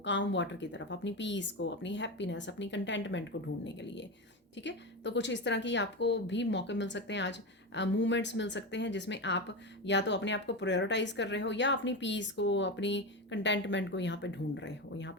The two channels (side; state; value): both; normal; correlation 0.19